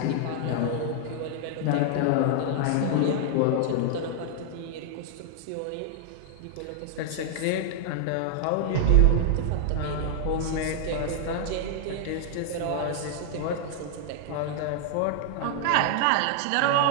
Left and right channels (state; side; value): different; both; correlation -0.01